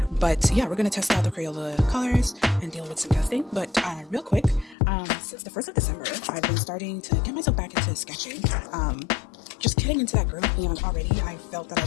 But yeah, we're going to test out the Crayola colors and deal with some testing. But real quick, since the 1st of December, I've been starting to get myself back into sketching. Just getting into that groove, and already I felt that I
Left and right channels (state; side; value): drops out; right; at 4.8 s